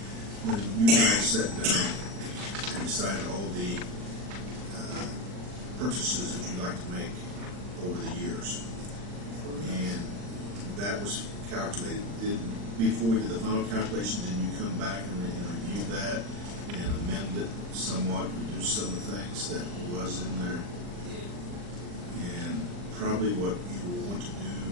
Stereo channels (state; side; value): late; left; 39 ms